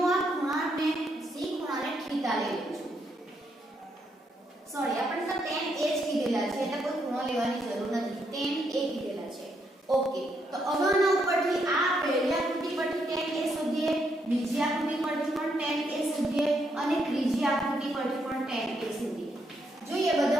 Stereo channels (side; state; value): both; normal; correlation 0.77